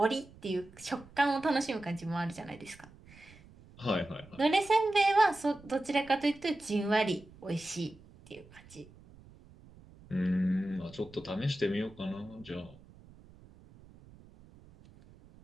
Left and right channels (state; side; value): noise; right; rumble, 23 dB below the sound